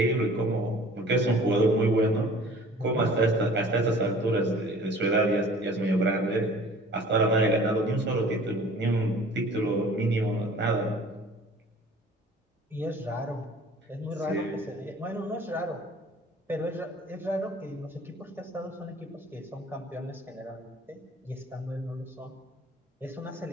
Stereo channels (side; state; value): both; normal; correlation 0.48